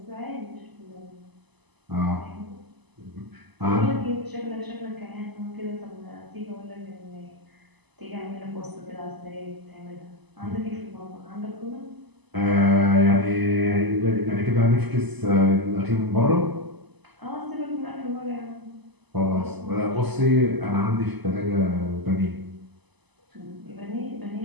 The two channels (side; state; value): left; late; 1.0 ms